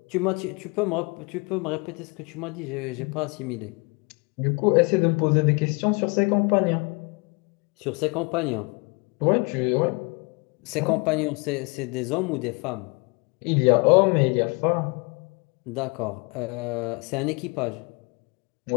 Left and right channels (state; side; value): quieter; right; 30.4 dB